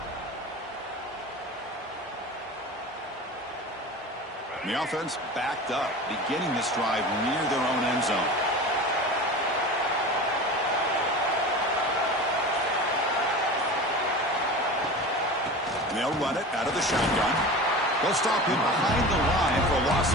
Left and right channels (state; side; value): normal; both; correlation 0.33